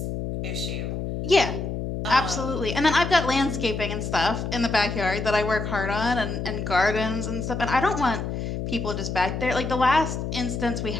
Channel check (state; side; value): noise; left; hum, 4 dB below the sound